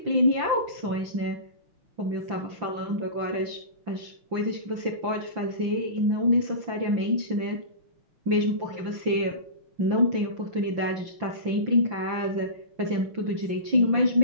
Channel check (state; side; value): late; left; 5.9 ms